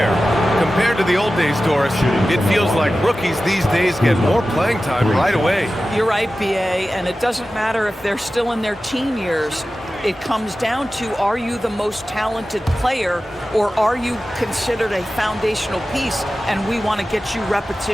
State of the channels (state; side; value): normal; both; correlation 0.95